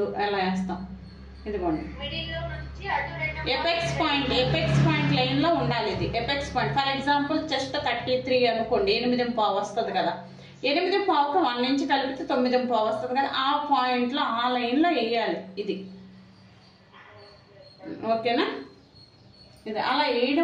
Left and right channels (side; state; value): both; identical; correlation 1.00